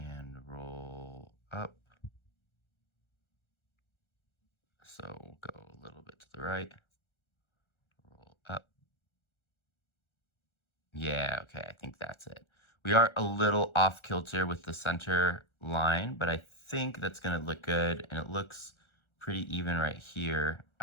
roll up. So we'll go a little bit to the right, roll up. Yeah, okay, I think that's it. We are a little off kilter with the center line, but I think that's gonna look good, and it looks pretty even right here.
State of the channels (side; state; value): right; late; 1.4 ms